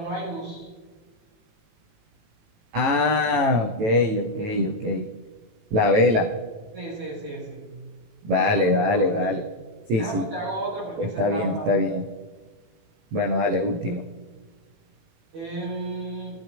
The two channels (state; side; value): late; left; 19 ms